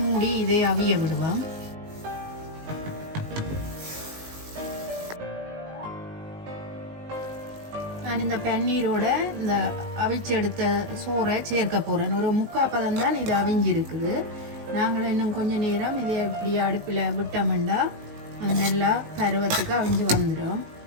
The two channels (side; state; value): left; late; 19 ms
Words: இதை அவிய விடுவோம். நான் இந்த பன்னீரோட இந்த அவிச்செடுத்த சோறை சேர்க்க போகிறேன். ஒரு 3/4 பதம் தான் இது அவிஞ்சிருக்குது. நாங்கள் இன்னும் கொஞ்ச நேரம் இதை இப்படி அடுப்பில் விட்டோம்னா அது நல்லா பருவத்துக்கு அவிஞ்சு வந்துடும்.